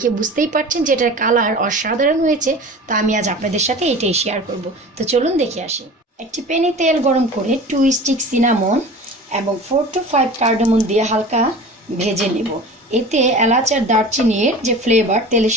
বুঝতেই পারছেন যে এটার কালার অসাধারণ হয়েছে। তা আমি আজ আপনাদের সাথে এটাই শেয়ার করব। তো চলুন দেখে আসি। একটি প্যানে তেল গরম করে 2 স্টিক সিনামন এবং 4 to 5 কার্ডামন দিয়ে হালকা ভেজে নেব। এতে এলাচ আর দারচিনির যে ফ্লেভার তেলের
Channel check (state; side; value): normal; both; correlation 0.38